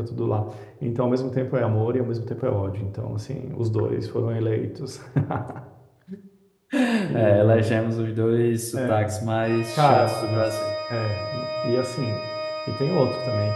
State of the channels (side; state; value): both; identical; correlation 1.00